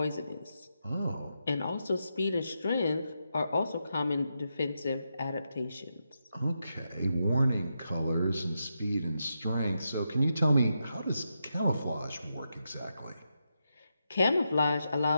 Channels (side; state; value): both; inverted; correlation -0.85